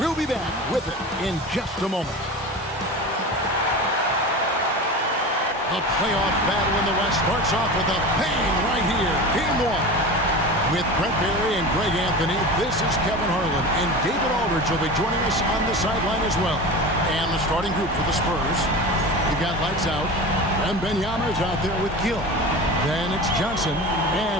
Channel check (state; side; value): normal; both; correlation 0.31